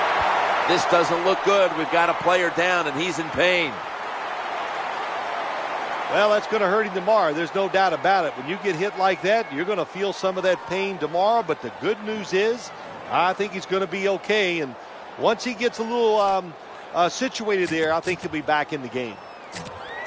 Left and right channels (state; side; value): identical; both; correlation 1.00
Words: This doesn't look good. We've got a player down, and he's in pain. Well, that's going to hurt him tomorrow. There's no doubt about it. When you get hit like that, you're going to feel some of that pain tomorrow. But the good news is, I think he's going to be okay. And once he gets a little situated there, I think he'll be back in the game.